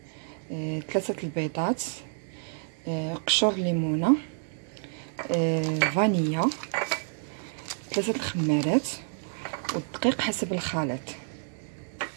3 البيضات، قشور ليمونه، فانيليا، 3 الخمارات والدقيق حسب الخليط.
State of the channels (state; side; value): silent; left; digital silence